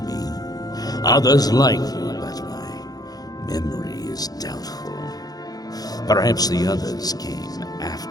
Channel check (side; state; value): right; late; 0.19 ms